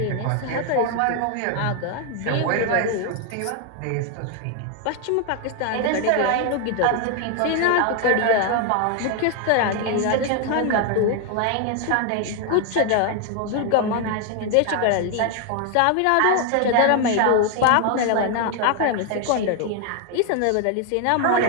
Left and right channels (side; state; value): both; different; correlation 0.01